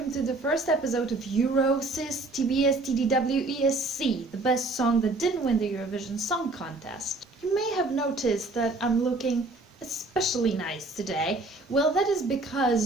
to the first episode of Eurosis TBSTDWESC, the best song that didn't win the Eurovision Song Contest. You may have noticed that I'm looking especially nice today. Well, that is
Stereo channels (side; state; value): left; quieter; 3.1 dB